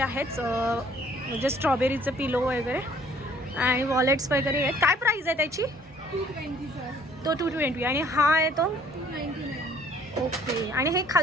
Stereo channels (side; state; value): both; normal; correlation 0.58